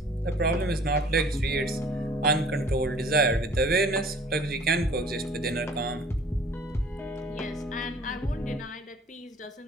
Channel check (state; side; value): normal; both; correlation 0.51